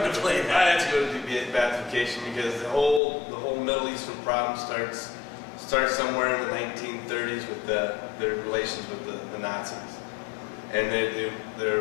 to play that. I had to go to De-Baathification because the whole Middle Eastern problem starts somewhere in the 1930s with their relations with the Nazis, and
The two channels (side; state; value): right; drops out; at 3.0 s